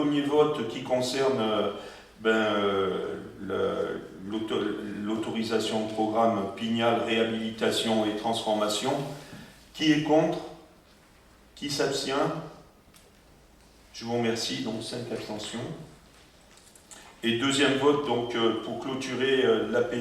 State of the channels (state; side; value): identical; both; correlation 1.00